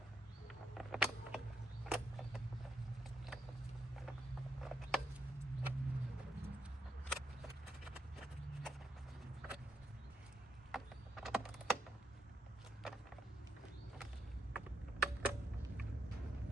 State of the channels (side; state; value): both; normal; correlation 0.78